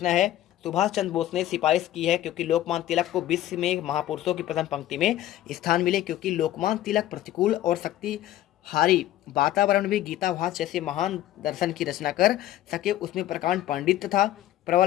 है, सुभाष चंद्र बोस ने सिफारिश की है क्योंकि लोकमान्य तिलक को विश्व में महापुरुषों की प्रथम पंक्ति में स्थान मिले, क्योंकि लोकमान्य तिलक प्रतिकूल और शक्तिहारी वातावरण में गीताभास जैसे महान दर्शन की रचना कर सके। उसमें प्रकांड पांडित्य था,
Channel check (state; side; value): quieter; right; 13.4 dB